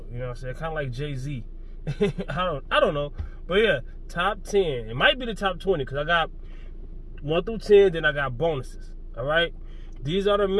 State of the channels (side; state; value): both; identical; correlation 1.00